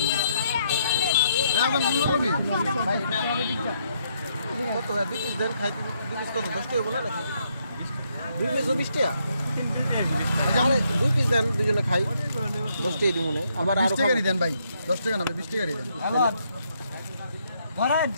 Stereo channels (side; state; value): both; inverted; correlation -0.74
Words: কত 20 দেন খাইতে 20 কত 10 টাকা বলে নাকি 2 পিস 20 টাকা আরে 2 পিস দেন দুজনে খাই 10 টাকা দিমুনে আবার আর 20 টাকা দেন ভাই 10 টাকা না 20 টাকা দেন